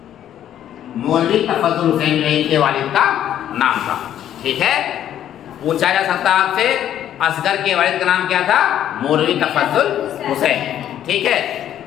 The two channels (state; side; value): quieter; right; 10.9 dB